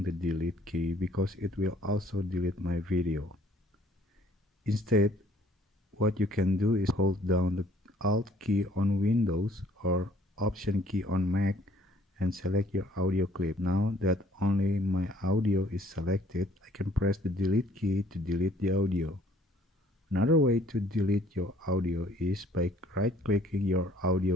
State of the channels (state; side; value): normal; both; correlation 0.60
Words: the delete key because it will also delete my video. Instead, what you can do is hold down the Alt key on Windows or Option key on Mac and select your audio clip. Now that only my audio is selected, I can press the delete key to delete the audio. Another way to delete your audio is by right-clicking your